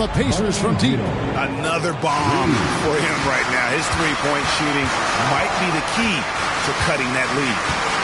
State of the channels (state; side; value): identical; both; correlation 1.00